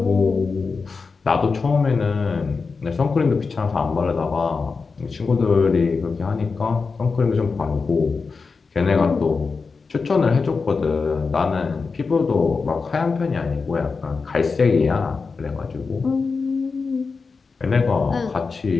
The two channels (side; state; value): right; quieter; 4.7 dB